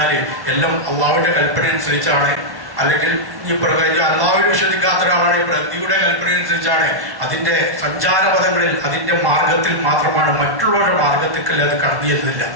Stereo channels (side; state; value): left; late; 1.1 ms